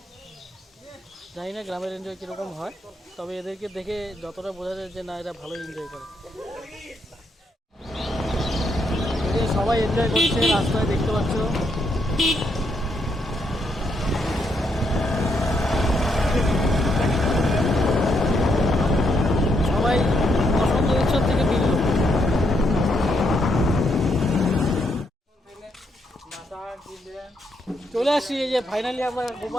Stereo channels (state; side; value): normal; both; correlation 0.77